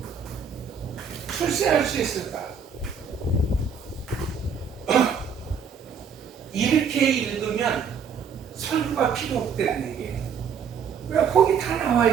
출세할 수 있을까? 이렇게 읽으면 설교가 필요 없다는 얘기예요. 왜 거기 다 나와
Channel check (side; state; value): left; quieter; 6.5 dB